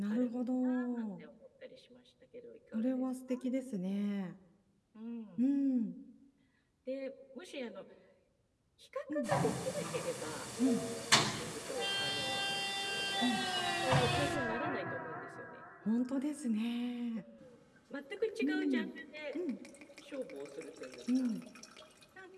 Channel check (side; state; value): both; identical; correlation 1.00